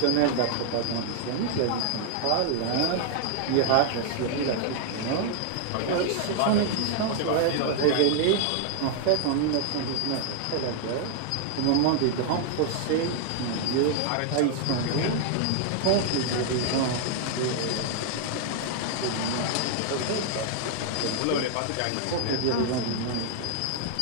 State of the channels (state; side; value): different; both; correlation 0.00